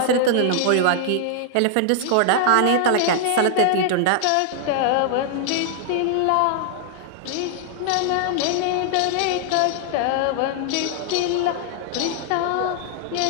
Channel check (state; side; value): different; both; correlation -0.01